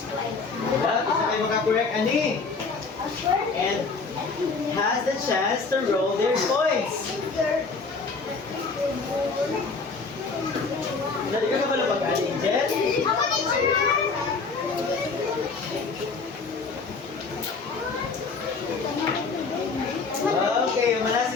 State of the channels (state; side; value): quieter; right; 4.4 dB